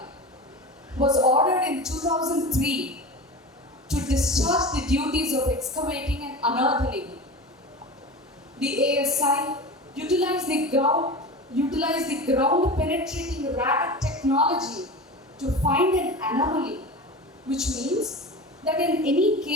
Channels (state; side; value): normal; both; correlation 0.31